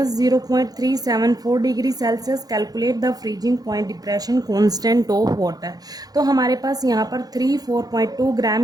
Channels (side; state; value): left; late; 0.19 ms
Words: degree Celsius. Calculate the freezing point depression constant of water. तो हमारे पास यहाँ पर 34.2